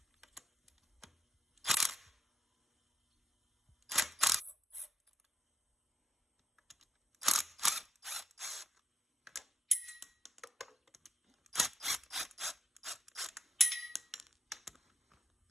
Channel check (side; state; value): both; normal; correlation 0.83